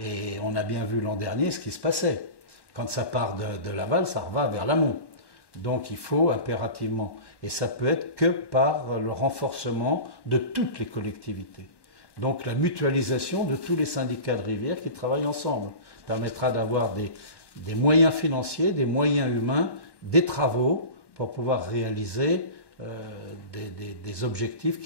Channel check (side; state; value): right; late; 1.1 ms